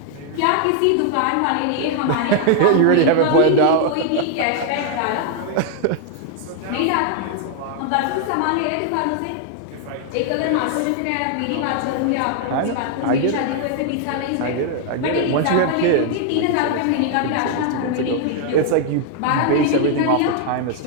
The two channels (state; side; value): different; both; correlation 0.00